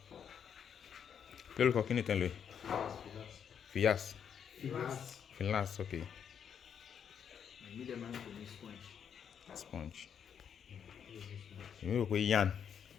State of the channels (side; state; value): right; quieter; 7.9 dB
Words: Quello qua che ne ten lui? Fias. Filas, ok. Medium man for me sponge. Sponge. Io qui Yan.